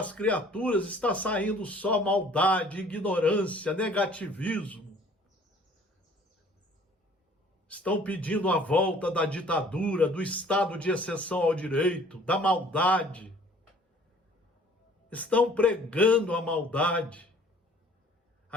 criaturas está saindo só maldade, ignorância, negativismo. Estão pedindo a volta da ditadura, do estado de exceção ao direito, da maldade. Estão pregando a maldade,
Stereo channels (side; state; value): both; normal; correlation 0.54